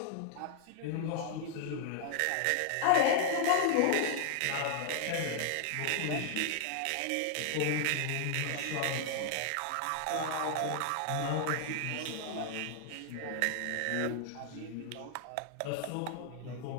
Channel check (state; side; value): different; both; correlation 0.00